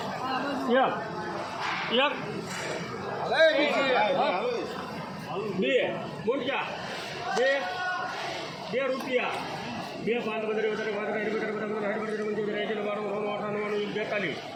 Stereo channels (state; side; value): identical; both; correlation 1.00